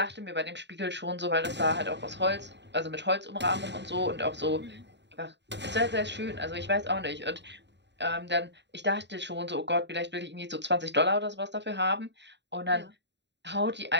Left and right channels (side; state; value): left; late; 0.51 ms